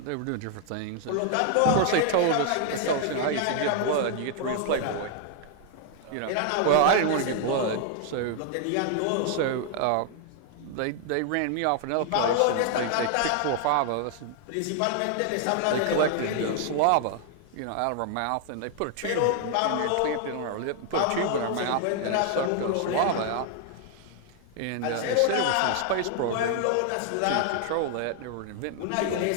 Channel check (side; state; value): both; different; correlation 0.00